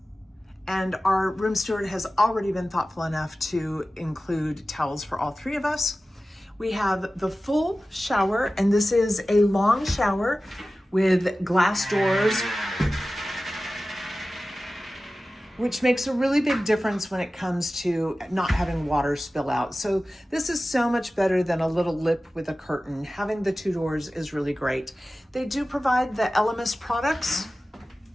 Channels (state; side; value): normal; both; correlation 0.96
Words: and our room steward has already been thoughtful enough to include towels for all 3 of us. We have the full shower, and this is a long shower with glass doors, which makes a really big difference when it comes to not having water spill out. So this is so much better than a little lip with a curtain. Having the 2 doors is really great. They do provide the Elemis products.